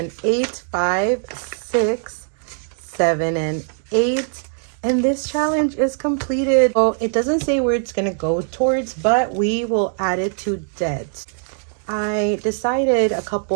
8, 5, 6, 7, and 8. And this challenge is completed. Oh, it doesn't say where it's gonna go towards, but we will add it to debt. I decided a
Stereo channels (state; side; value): silent; left; digital silence